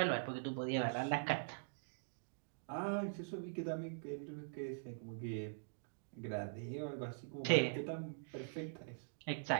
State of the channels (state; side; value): silent; left; digital silence